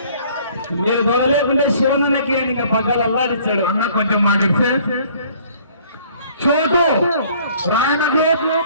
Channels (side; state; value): both; inverted; correlation -0.57